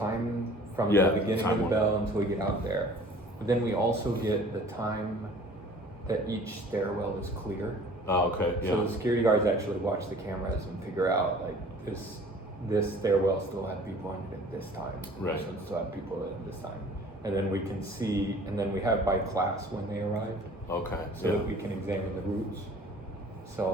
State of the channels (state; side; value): normal; both; correlation 0.49